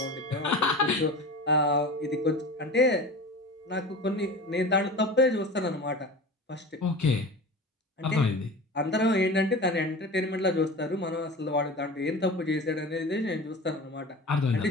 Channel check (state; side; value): normal; both; correlation 0.34